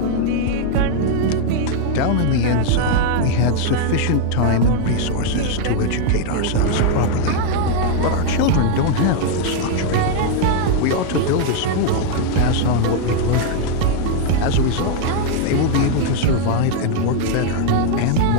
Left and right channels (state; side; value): different; both; correlation 0.00